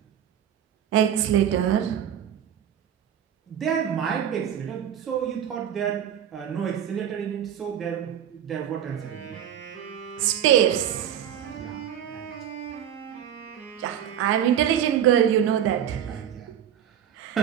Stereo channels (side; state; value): left; quieter; 9.8 dB